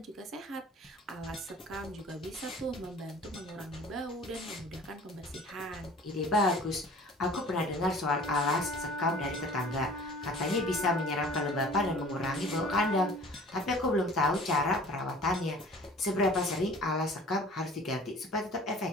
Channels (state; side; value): normal; both; correlation 0.47